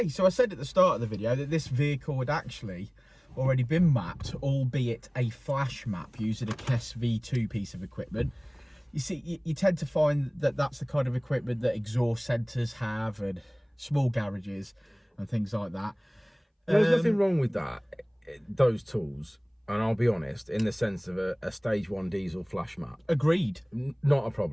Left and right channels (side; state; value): both; identical; correlation 1.00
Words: so I said at the start of the video that this vehicle had actually already been mapped, albeit a flash map using a KES V2 piece of equipment. You see, you tend to find that that's the kind of equipment that exhaust centres have and small garages and things like that. There's nothing wrong with that, those tools, and I'll be honest, in the sense of a stage 1 diesel flash map. Agreed. Not a